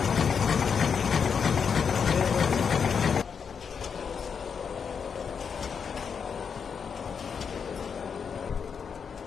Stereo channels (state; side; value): quieter; right; 6.5 dB